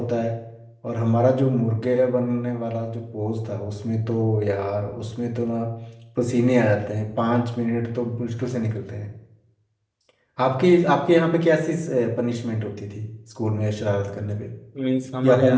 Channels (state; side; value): identical; both; correlation 1.00